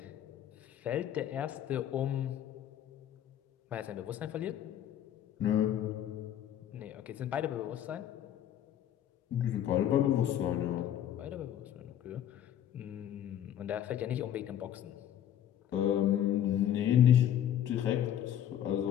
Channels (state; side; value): quieter; right; 10.6 dB